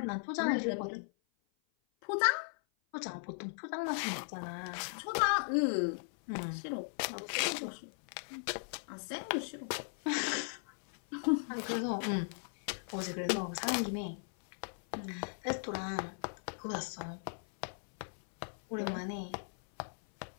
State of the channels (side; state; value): right; silent; 53 dB below the other